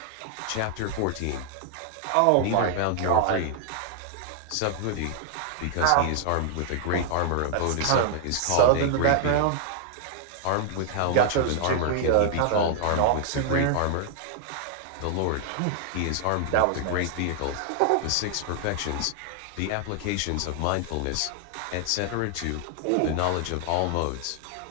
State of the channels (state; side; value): different; both; correlation 0.00